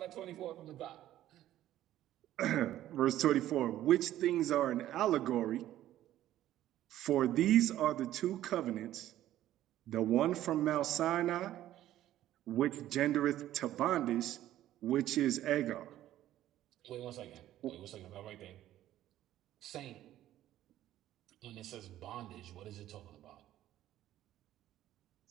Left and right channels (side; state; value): left; quieter; 13.2 dB